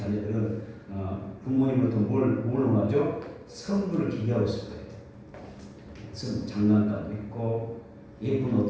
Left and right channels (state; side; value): identical; both; correlation 1.00